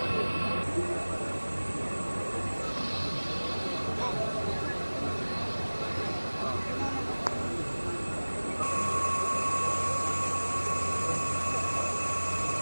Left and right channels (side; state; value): both; inverted; correlation -1.00